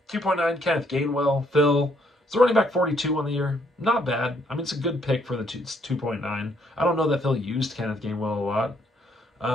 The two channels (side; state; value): both; normal; correlation 0.70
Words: Kenneth Gainwell. Phil, it's a running back 42 on the year. Not bad. I mean, it's a good pick for the 2.9. I don't know that Phil used Kenneth Gainwell a lot.